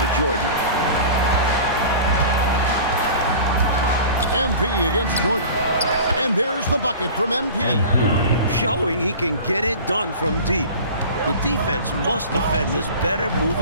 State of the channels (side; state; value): both; inverted; correlation -0.38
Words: Jordan. MP against Jordan. And there's the bucket from MP. Showing he can get it done from deep. The defense must defend this better